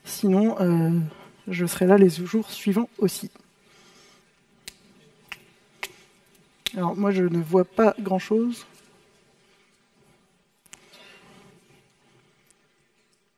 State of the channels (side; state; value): both; identical; correlation 1.00